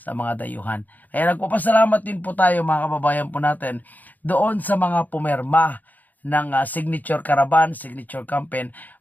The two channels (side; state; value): right; late; 0.082 ms